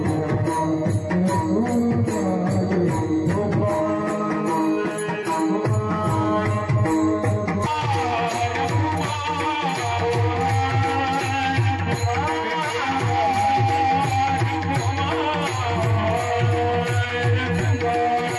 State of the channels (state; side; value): identical; both; correlation 1.00